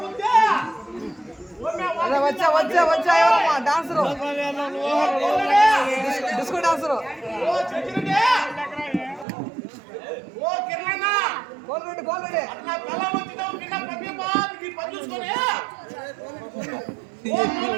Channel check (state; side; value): drops out; left; at 9.2 s